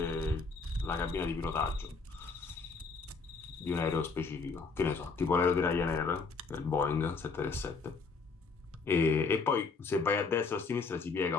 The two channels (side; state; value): right; quieter; 4.5 dB